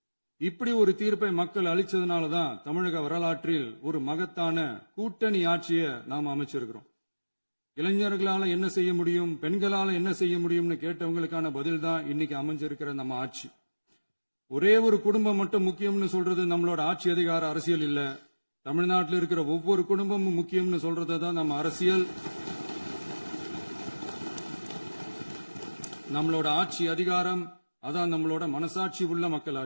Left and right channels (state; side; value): inverted; both; correlation -1.00